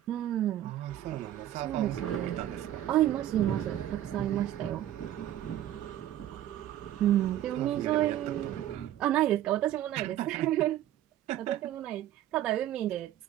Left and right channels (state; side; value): quieter; left; 12.4 dB